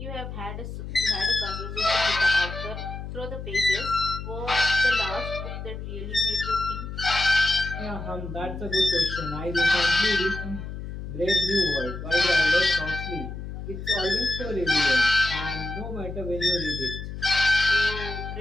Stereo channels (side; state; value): left; noise; hum, 8 dB below the sound